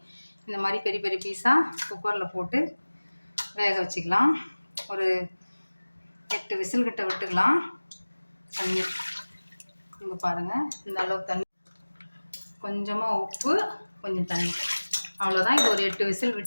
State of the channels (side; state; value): both; inverted; correlation -1.00